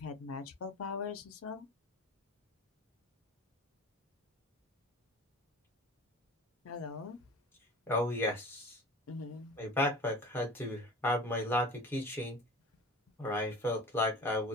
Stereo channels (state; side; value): normal; both; correlation 0.38